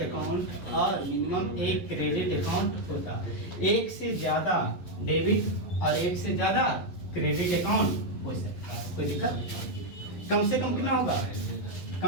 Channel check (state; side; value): late; right; 11 ms